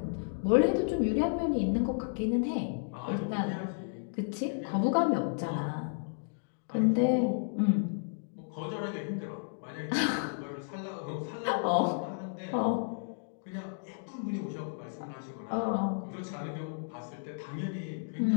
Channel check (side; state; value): right; silent; digital silence